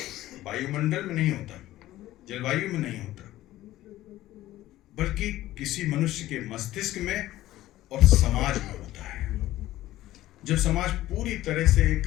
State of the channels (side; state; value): right; quieter; 15.2 dB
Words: वायुमंडल में नहीं होता, जलवायु में नहीं होता, बल्कि किसी मनुष्य के मस्तिष्क में और समाज में होता है। जब समाज पूरी तरह से एक